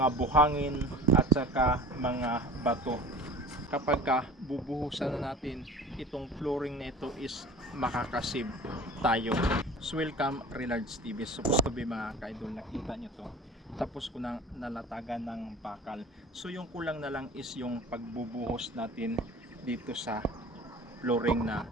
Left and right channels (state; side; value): normal; both; correlation 0.41